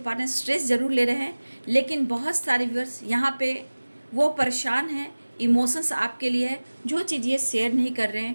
स्ट्रेस ज़रूर ले रहे हैं, लेकिन बहुत सारे व्यूअर्स यहाँ पे वो परेशान हैं, इमोशंस आपके लिए है, जो चीज़ ये शेयर नहीं कर रहे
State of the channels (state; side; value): inverted; both; correlation -1.00